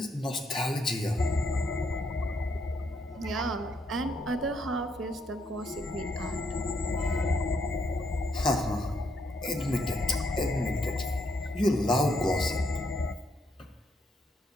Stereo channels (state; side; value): normal; both; correlation 0.75